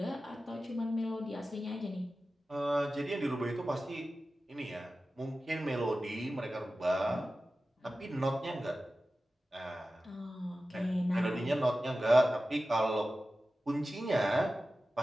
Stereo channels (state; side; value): normal; both; correlation 0.94